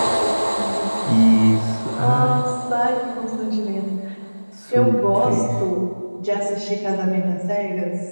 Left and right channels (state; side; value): inverted; both; correlation -1.00